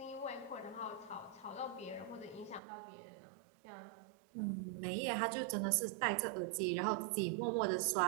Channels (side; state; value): left; drops out; at 2.6 s